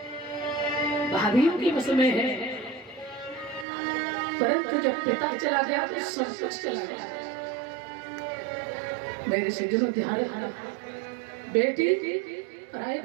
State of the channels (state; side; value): drops out; left; at 3.7 s